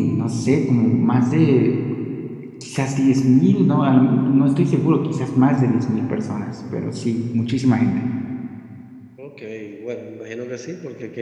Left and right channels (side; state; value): both; identical; correlation 1.00